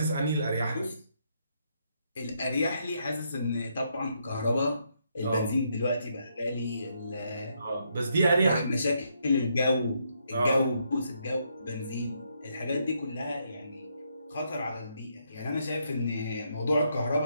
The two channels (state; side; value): inverted; both; correlation -0.76